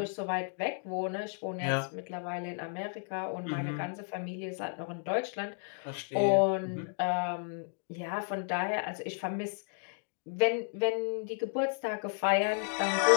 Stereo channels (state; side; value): silent; right; 56 dB below the other